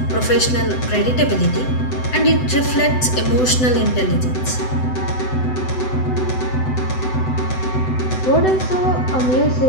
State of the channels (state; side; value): late; right; 7.9 ms